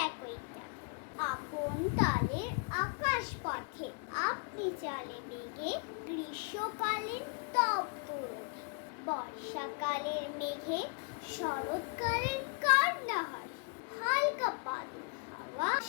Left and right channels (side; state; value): right; quieter; 35.9 dB